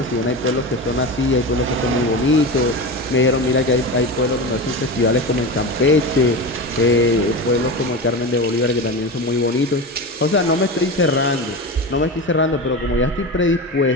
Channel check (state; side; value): normal; both; correlation 0.23